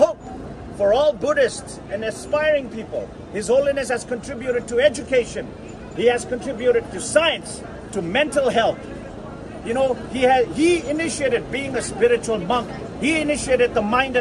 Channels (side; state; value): both; identical; correlation 1.00